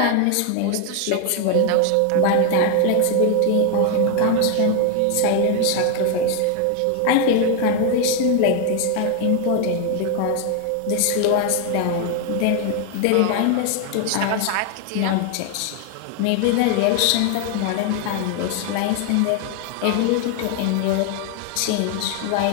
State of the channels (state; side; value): different; both; correlation 0.01